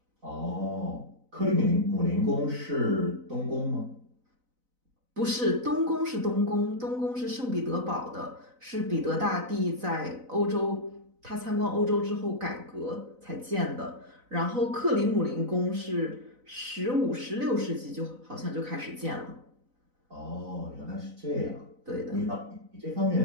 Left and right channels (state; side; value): late; left; 4.0 ms